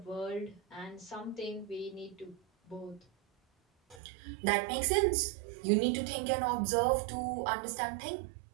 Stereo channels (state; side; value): drops out; left; at 4.0 s